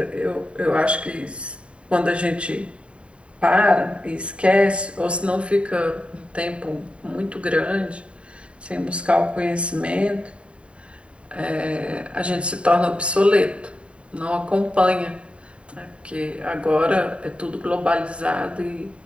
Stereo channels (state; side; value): late; left; 0.059 ms